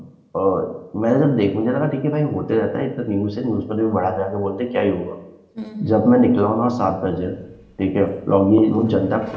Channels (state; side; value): identical; both; correlation 1.00